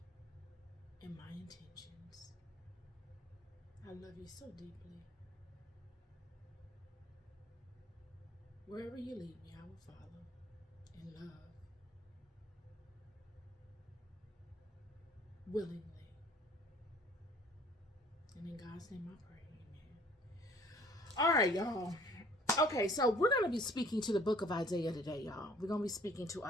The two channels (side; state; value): both; normal; correlation 0.55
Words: and my intentions. I love you so deeply. Wherever you lead me, I will follow in love, willingly. And in God's name I pray, amen. All right, y'all. Okay, so we're going to be speaking to the book of Isaiah today, y'all. We're going to be speaking to